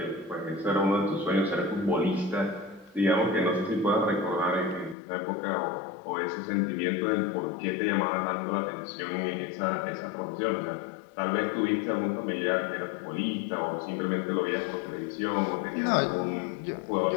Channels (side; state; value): right; drops out; at 5.0 s